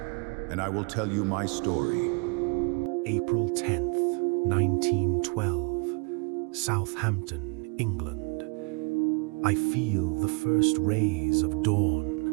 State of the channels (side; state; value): left; quieter; 33.9 dB